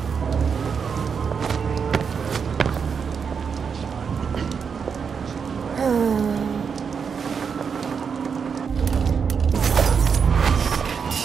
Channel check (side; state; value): left; quieter; 6.3 dB